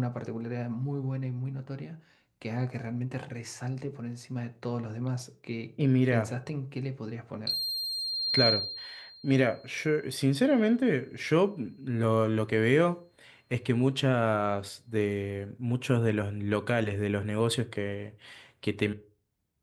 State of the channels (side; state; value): both; identical; correlation 1.00